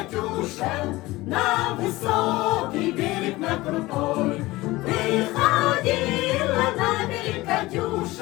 на высокий берег, на крутой. Выходила на берег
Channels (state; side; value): quieter; right; 19.6 dB